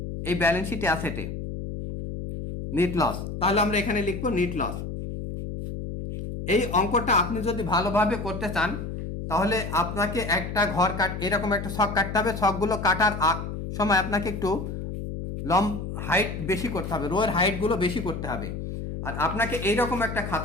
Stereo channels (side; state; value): left; noise; hum, 6 dB below the sound